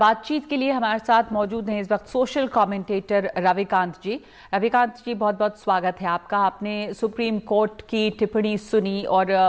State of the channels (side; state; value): both; identical; correlation 1.00